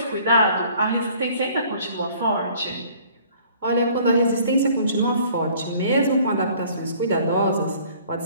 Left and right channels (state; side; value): inverted; both; correlation -0.55